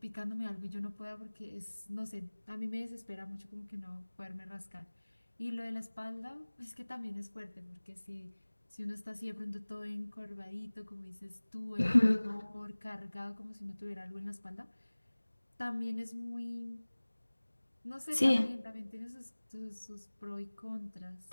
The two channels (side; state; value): both; inverted; correlation -1.00